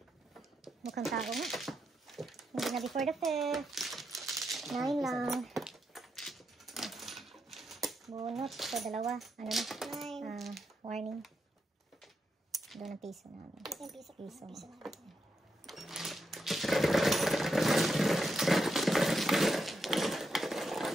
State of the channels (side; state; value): both; normal; correlation 0.83